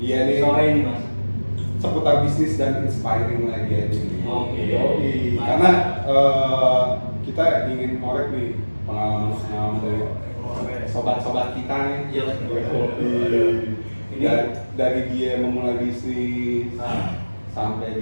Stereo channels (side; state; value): both; inverted; correlation -1.00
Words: nih. Sore ini Mas. Seputar bisnis dan inspiring lagi aja nih. Oke. Karena kita ingin ngorek nih pengalaman dari sobat-sobat kita nih. Iya. Ini dari dia memulai bisnis sampai